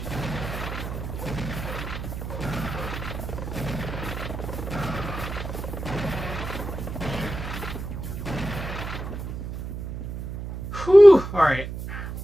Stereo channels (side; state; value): right; noise; hum, 7 dB below the sound